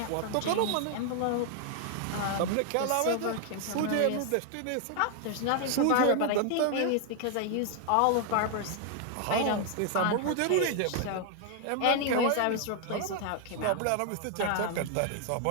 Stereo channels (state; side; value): different; both; correlation 0.00